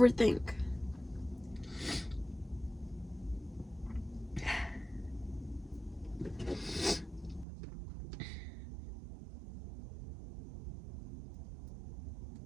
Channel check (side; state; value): left; drops out; at 7.5 s